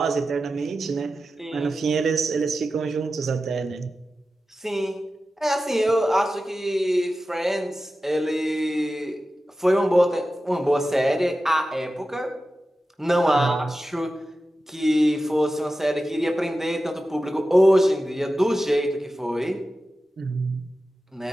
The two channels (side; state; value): both; normal; correlation 0.93